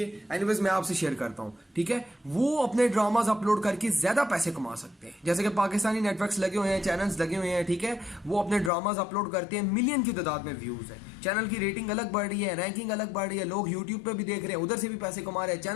एनीवेज मैं आपसे शेयर करता हूं, ठीक है। वो अपने ड्रामाज अपलोड करके ज्यादा पैसे कमा सकते हैं। जैसे कि पाकिस्तानी नेटवर्क्स लगे हुए हैं, चैनल्स लगे हुए हैं, ठीक है। वो अपने ड्रामाज अपलोड करते हैं, मिलियन की तादाद में व्यूज है, चैनल की रेटिंग अलग बढ़ रही है, रैंकिंग अलग बढ़ रही है, लोग यूट्यूब पे भी देख रहे हैं, उधर से भी पैसे कमा रहे हैं,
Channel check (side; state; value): right; drops out; at 8.7 s